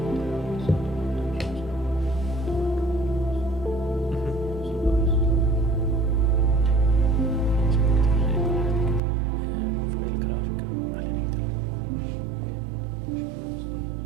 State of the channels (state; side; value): drops out; left; at 9.0 s